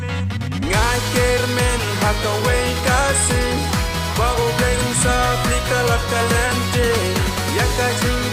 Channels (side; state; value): both; identical; correlation 1.00